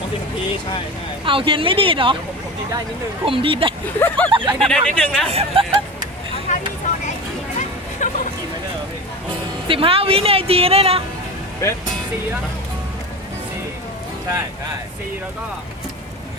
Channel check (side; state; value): both; normal; correlation 0.29